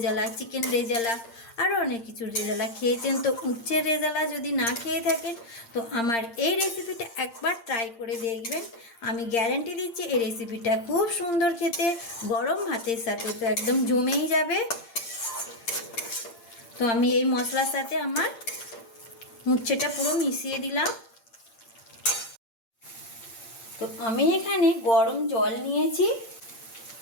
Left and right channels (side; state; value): right; late; 8.7 ms